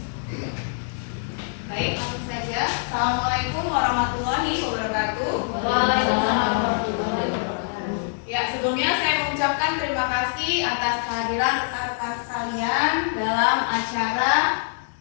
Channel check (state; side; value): silent; right; digital silence